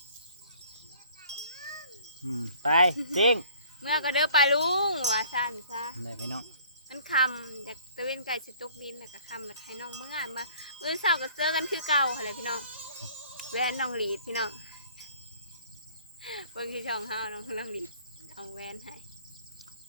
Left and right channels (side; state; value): both; inverted; correlation -0.53